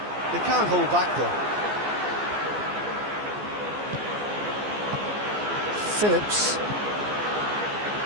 They can't hold back though. Phillips.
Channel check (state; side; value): late; left; 14 ms